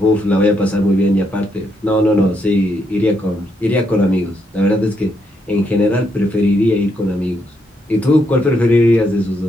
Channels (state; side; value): normal; both; correlation 0.77